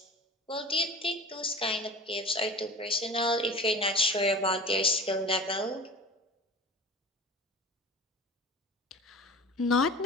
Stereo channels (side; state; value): both; normal; correlation 0.37